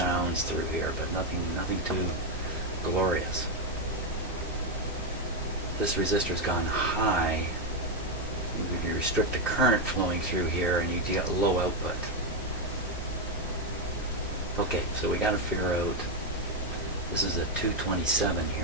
through here, but nothing too glorious. This resistor's gone high. You restrict the current flowing through here, and you get low output. Okay, so we got to figure out. This is a 227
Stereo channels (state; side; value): normal; both; correlation 0.05